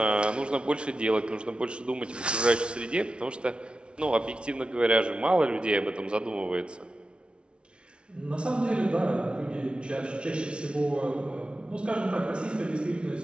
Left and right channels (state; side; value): late; left; 0.057 ms